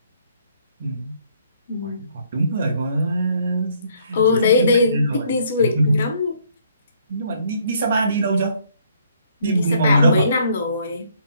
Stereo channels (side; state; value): both; inverted; correlation -0.65